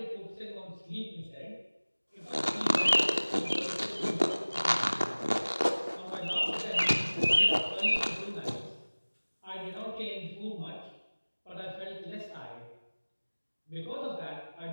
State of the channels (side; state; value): both; inverted; correlation -1.00